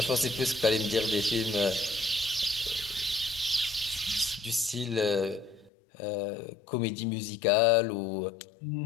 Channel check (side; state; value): right; drops out; at 5.7 s